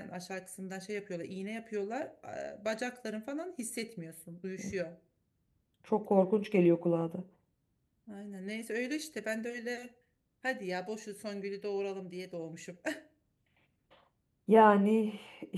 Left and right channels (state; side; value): identical; both; correlation 1.00